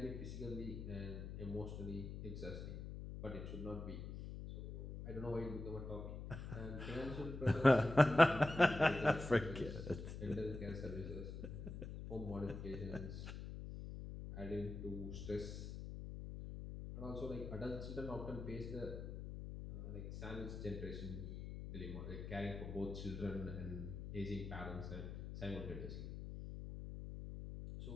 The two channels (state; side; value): noise; left; hum, 7 dB below the sound